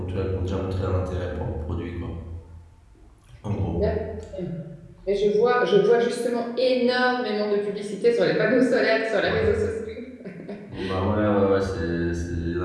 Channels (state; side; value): identical; both; correlation 1.00